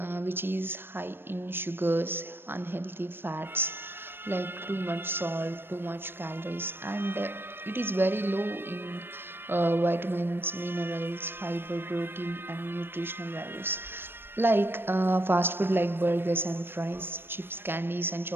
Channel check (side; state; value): left; late; 0.10 ms